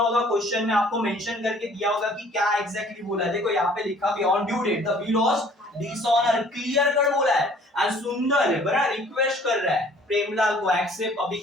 क्वेश्चन में, आपको मेंशन करके दिया होगा कि क्या एग्जैक्टली बोला है। देखो यहाँ पे लिखा भी on due date the bill was dishonour, clear cut बोला है। एंड सुंदर है बड़ा, रिक्वेस्ट कर रहा है प्रेमलाल को एक्सेप्ट अभी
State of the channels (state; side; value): normal; both; correlation 0.55